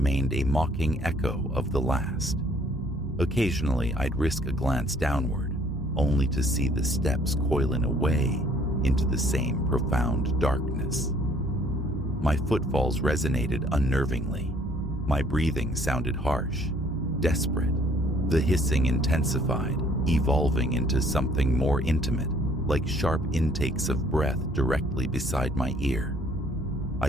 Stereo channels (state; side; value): normal; both; correlation 0.60